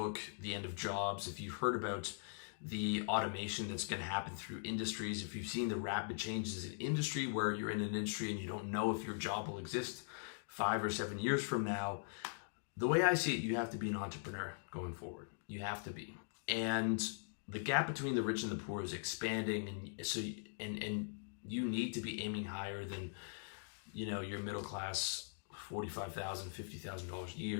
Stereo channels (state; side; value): silent; right; digital silence